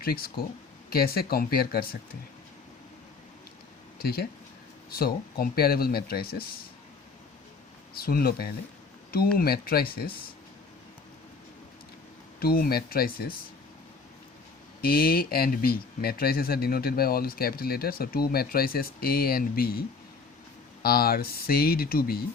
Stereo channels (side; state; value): right; quieter; 4.4 dB